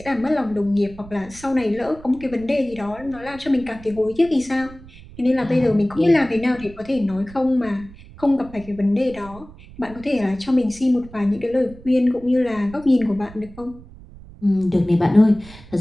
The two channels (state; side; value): noise; right; rumble, 19 dB below the sound